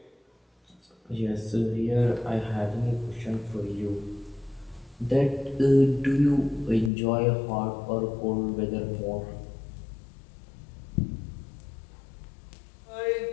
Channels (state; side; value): drops out; right; at 6.9 s